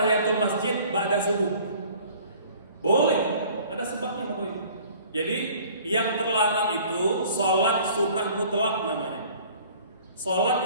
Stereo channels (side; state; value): both; inverted; correlation -0.51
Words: masjid ba'da subuh? Boleh, ada sebabnya Bapak Ibu. Jadi yang terlarang itu sholat sunnah mutlak namanya.